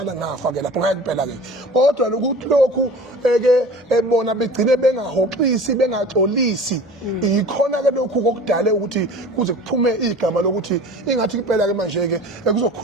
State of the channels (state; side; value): normal; both; correlation 0.41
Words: ngafa-ke lapho ngeke phela-ke kodwa lokuthi lokhu-ke bona begcine bengahoxisi bengaxolisi yikhona-ke lokhu kokudale ukuthi kuze kuphume igama lokuthi ukuthi ingathi impela ke manje ke